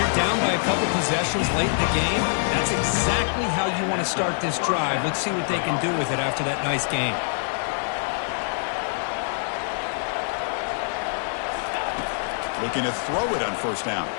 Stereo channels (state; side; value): silent; right; 58 dB below the other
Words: down by a couple possessions late in the game. That's exactly how you want to start this drive. Let's see what they can do with it after that nice game. Looking to throw it on 1st down.